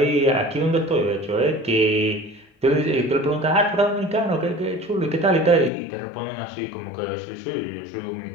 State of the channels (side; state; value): right; drops out; at 5.7 s